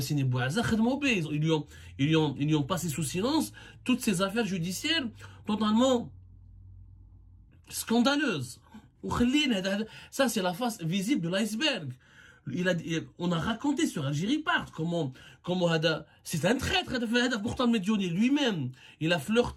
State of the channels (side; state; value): both; identical; correlation 1.00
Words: lui ont passé sous silence toutes ces affaires judiciaires totalement scandaleuse. Ça, c'est la face visible de l'iceberg. On a raconté sur Algérie Part comment c'est un traître, pourtant Medioni lui-même, il a